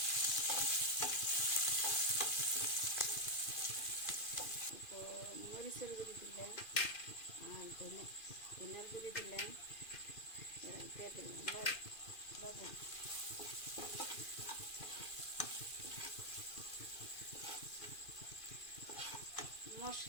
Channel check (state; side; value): late; right; 2.4 ms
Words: তো মরিচের গুঁড়ি দিলাম, আর ধনিয়ার গুঁড়ি দিলাম, দিয়ে দিলাম লবণ।